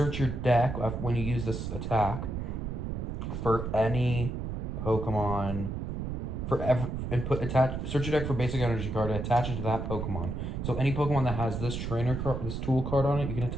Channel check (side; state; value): right; noise; rumble, 4 dB below the sound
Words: your deck when you use this attack for any Pokemon search your deck for basic energy card and attach it to that Pokemon. So any Pokemon that has this trainer card, this tool card on it, you can